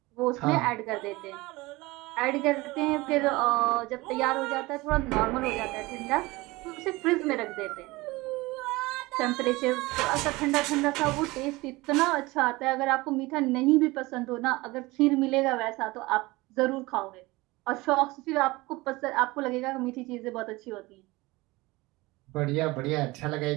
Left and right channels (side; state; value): left; quieter; 21.6 dB